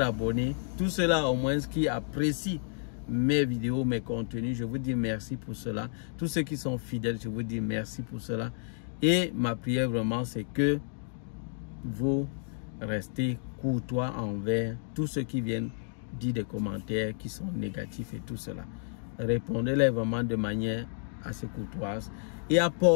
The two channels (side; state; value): right; silent; digital silence